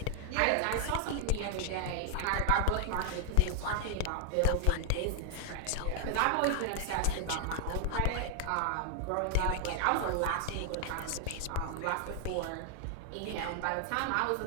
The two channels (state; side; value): different; both; correlation 0.00